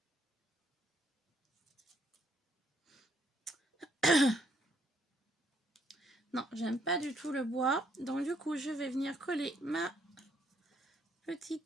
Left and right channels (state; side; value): normal; both; correlation 0.70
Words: Non, j'aime pas du tout le bois. Donc du coup, je vais venir coller ma